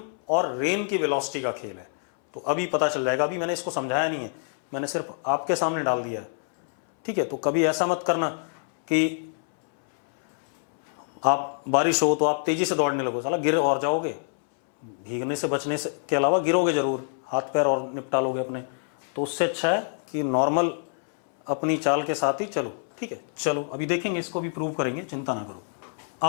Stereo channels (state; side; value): silent; right; 61 dB below the other